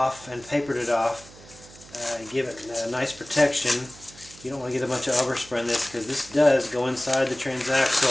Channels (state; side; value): noise; right; hum, 21 dB below the sound